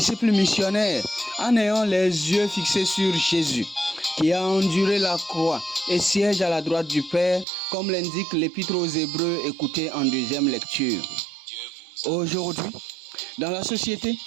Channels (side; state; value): left; drops out; at 7.5 s